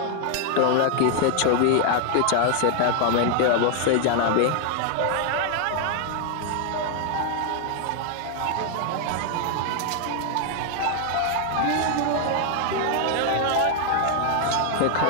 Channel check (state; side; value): different; both; correlation 0.00